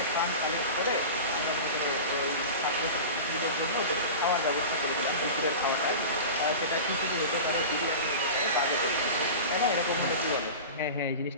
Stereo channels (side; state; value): both; inverted; correlation -0.31